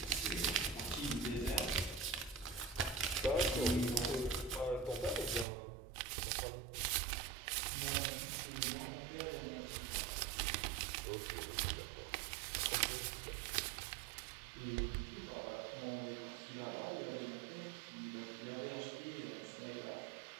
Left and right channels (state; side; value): drops out; left; at 5.5 s